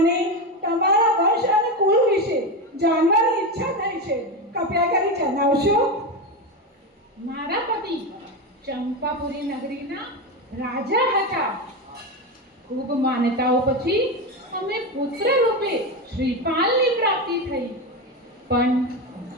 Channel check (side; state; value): both; normal; correlation 0.16